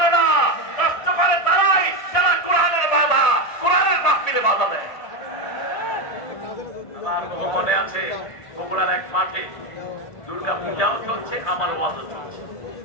না। নষ্ট করে তারাই যারা কোরআনের বাধা, কোরআনের মাহফিলে বাধা দেয়। আমার বহু মনে আছে বগুড়ার এক মাঠে দুর্গা পূজাও চলছে, আমার ওয়াজও চলছে।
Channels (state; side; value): late; right; 1.7 ms